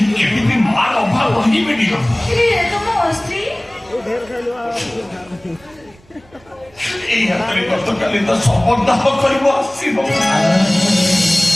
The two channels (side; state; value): right; noise; rumble, 28 dB below the sound